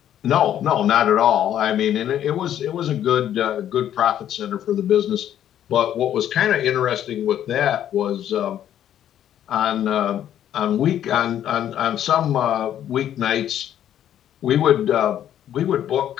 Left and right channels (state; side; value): quieter; right; 10.8 dB